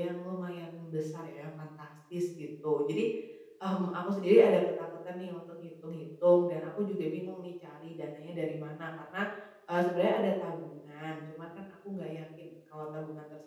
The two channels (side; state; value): both; identical; correlation 1.00